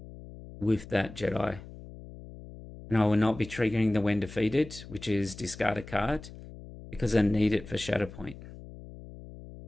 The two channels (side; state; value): left; noise; hum, 15 dB below the sound